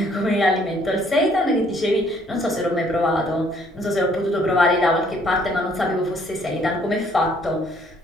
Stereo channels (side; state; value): both; normal; correlation 0.63